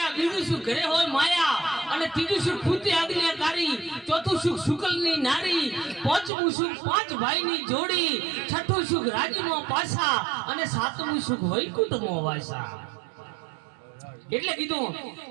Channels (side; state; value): left; drops out; at 6.3 s